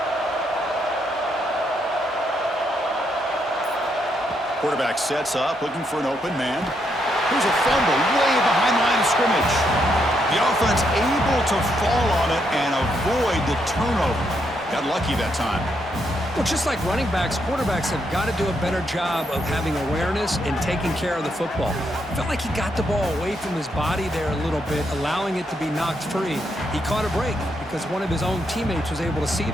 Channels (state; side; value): normal; both; correlation 0.78